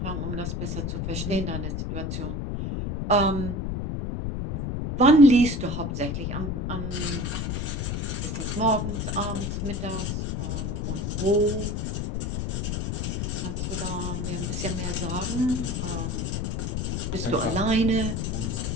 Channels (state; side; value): noise; left; rumble, 1 dB below the sound